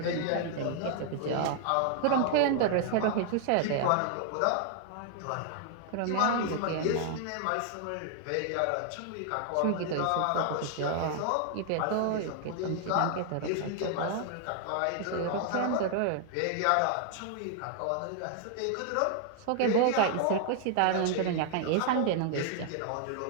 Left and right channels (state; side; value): different; both; correlation 0.00